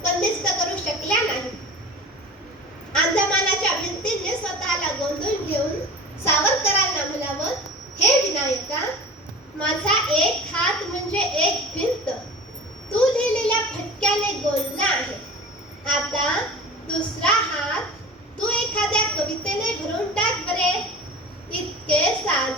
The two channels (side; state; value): both; normal; correlation 0.37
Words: बंदिस्त करू शकल्या नाही। अंधमानाच्या भिंतीने स्वतःला गोंधळून घेऊन सावरकरांना म्हणावं, हे विनायका, माझा एक हात म्हणजे एक भिंत तू लिहिलेल्या फटक्याने गोंधला आहे। आता दुसरा हात तू एखाद्या कवितेने भरून टाक बरे। इतके